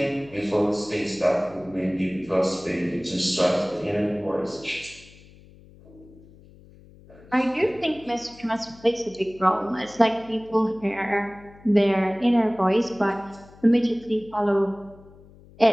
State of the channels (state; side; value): noise; left; hum, 23 dB below the sound